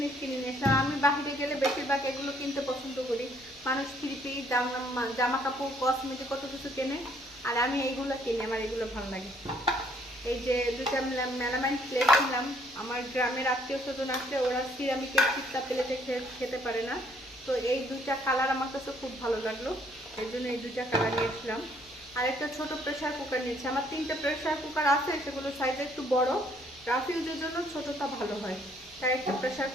কিনে নিয়েছিলাম। আমি বাহিরে গেলে বেশিরভাগ এগুলো কিনতে পছন্দ করি। মানুষ থ্রি জামা কাপড় কসমেটিক কত কিছু কেনে, আর আমি এইগুলো কিনি, আমার এগুলো ভালো লাগে। এই যে দুটা মেলামাইন প্লেট কিনলাম। আমার গ্রামের আত্মীয় স্বজন আসলে ওরা সিরামিকের চিত্তা প্লেটে খেতে পারে না। তো এই দুইটা কালার আমার কাছে খুব ভালো লাগলো, এই জন্য এই দুইটা কালার নিয়েছিলাম। আর একটা ছোট প্রেসার কুকার নিয়েছি। আমার 3টে প্রেসার কুকার আছে, সেগুলো সাইজ একটু বড়, রাফ ইউজের জন্য ছোটটা ভালো হয়, তাই একটা প্রেসার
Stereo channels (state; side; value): noise; left; hum, 27 dB below the sound